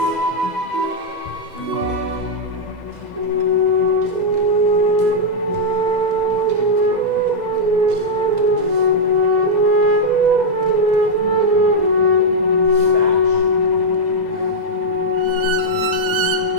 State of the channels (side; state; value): left; late; 2.0 ms